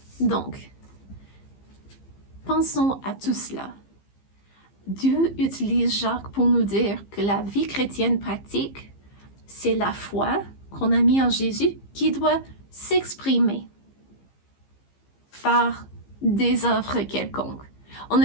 Donc, pensons à tout cela. Dieu utilise Jacques pour nous dire que la vie chrétienne pratique, c'est la foi qu'on a mis en Jésus qui doit s'exprimer par des œuvres quelconques. On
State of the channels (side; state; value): right; late; 15 ms